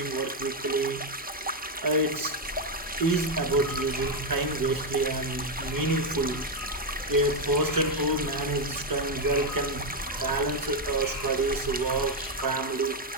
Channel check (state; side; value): normal; both; correlation 0.04